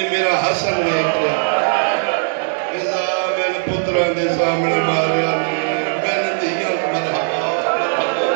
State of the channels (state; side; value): silent; left; digital silence